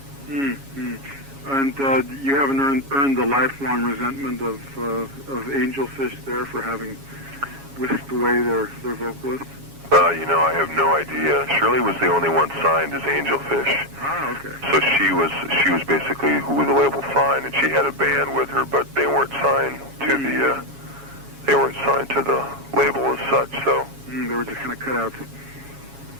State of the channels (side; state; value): left; late; 7.3 ms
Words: And you haven't earned the lifelong resentment of Angelfish there for having whisked away their vocalist? I have no idea. Shirley was the only one signed as Angelfish. Ah, okay. So she was basically who the label signed, and she had a band with her, but they weren't signed to the label as such. So they were just kind of cut out.